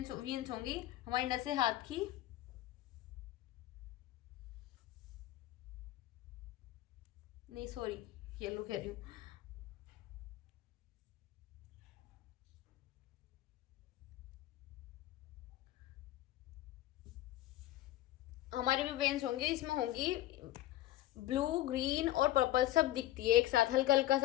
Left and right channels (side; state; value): right; quieter; 14.8 dB